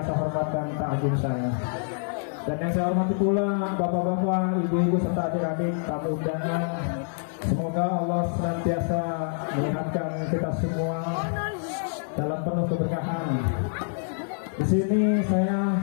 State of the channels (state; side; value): silent; right; 61 dB below the other